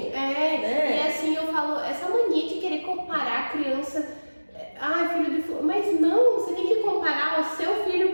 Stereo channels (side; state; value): both; inverted; correlation -1.00